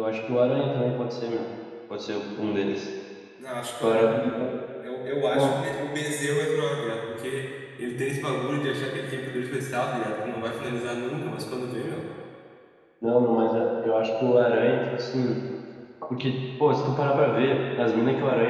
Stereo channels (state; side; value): identical; both; correlation 1.00